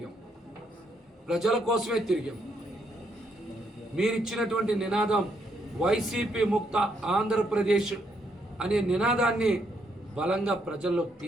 ప్రజల కోసమే తిరిగాం. మీరిచ్చినటువంటి నినాదం వైసీపీ ముక్త ఆంధ్రప్రదేశ్ అనే నినాదాన్ని బలంగా ప్రజల్లోకి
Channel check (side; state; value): both; normal; correlation 0.75